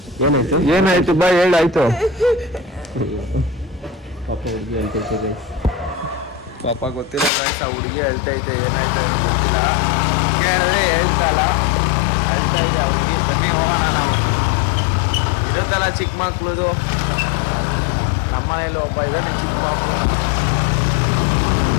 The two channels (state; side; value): drops out; right; at 7.3 s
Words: ಏನಾಯ್ತು? ಏನಾಯ್ತು ಬಾ ಹೇಳಾಯ್ತು. ಪಾಪ ಹುಡುಗಿ ಹೇಳ್ತಿರ್ತದೆ. ಪಾಪ ಗೊತ್ತಿಲ್ಲ ಗಾಯ್ಸ್, ಆ ಹುಡುಗಿ ಹೇಳ್ತೈತೆ ಏನಾಯ್ತು ಗೊತ್ತಿಲ್ಲ. ಕೇಳಿದ್ರೆ ಹೇಳ್ತಲ್ಲ, ಹೇಳ್ತಾ ಇದ್ದ ಹುಡುಗಿ. ಬನ್ನಿ ಹೋಗೋಣ. ನಾವು ಇರುತ್ತಲ್ಲ ಚಿಕ್ಕ ಮಕ್ಳದು, ನಮ್ಮ ಮನೇಲಿ ಒಬ್ಬ ಇದ್ದಾನೆ ಚಿಕ್ಕ ಮಕ್ಕಳು.